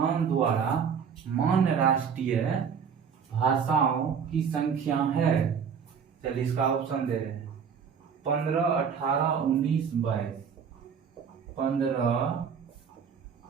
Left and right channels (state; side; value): quieter; left; 6.9 dB